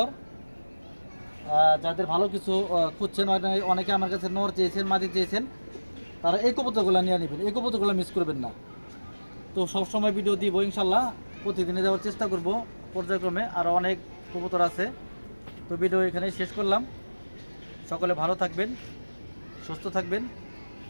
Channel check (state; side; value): inverted; both; correlation -1.00